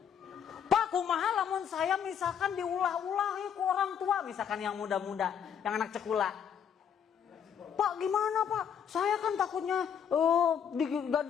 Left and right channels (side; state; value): right; quieter; 8.0 dB